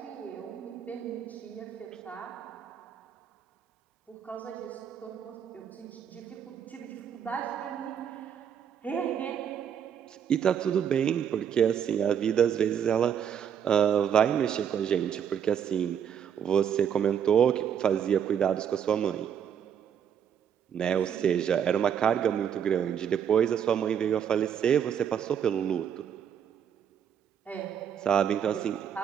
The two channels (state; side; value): quieter; left; 8.5 dB